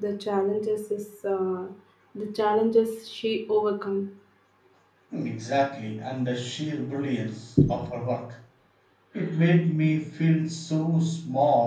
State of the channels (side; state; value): both; identical; correlation 1.00